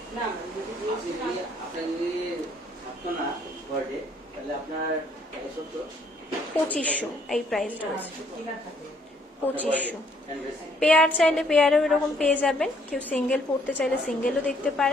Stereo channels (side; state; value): both; normal; correlation 0.66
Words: 2500 এই প্রাইসটা আছে। 2500। পেয়ার চাইলে পেয়ারও এরকম পেয়ে যাবেন, কেউ সিঙ্গেল পড়তে চাইলে সিঙ্গেলও দেখতে